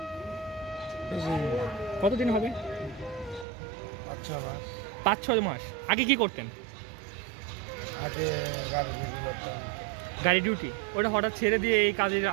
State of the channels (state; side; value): drops out; left; at 3.5 s